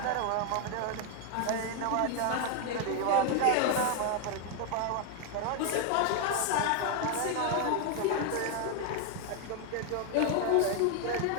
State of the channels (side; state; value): both; different; correlation 0.01